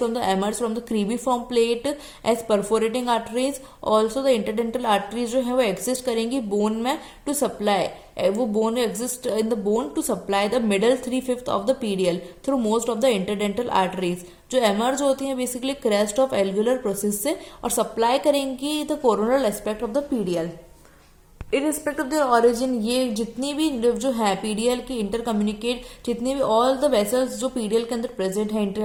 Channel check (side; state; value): both; identical; correlation 1.00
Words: the emerges from the cribriform plate as perforating arteries. Also the interdental arteries जो है वो एग्जिस्ट करेंगी बोन में टू सप्लाई, वो bone exist in the bone to supply the middle 3/5 of the PDL through most of the interdental arteries, जो emerge होती हैं basically crest of alveolar process से और सप्लाई करेंगी the coronal aspect of the PDL. इरिस्पेक्ट of their origin, ये जितनी भी जो है पीडीएल की इंटर कम्युनिकेट, जितनी भी ऑल द वेसल्स जो पीडीएल के अंदर प्रेजेंट